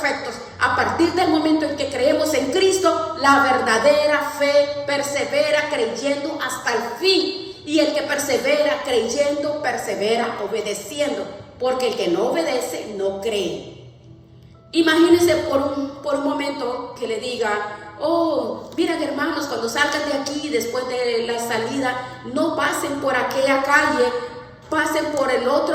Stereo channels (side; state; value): both; identical; correlation 1.00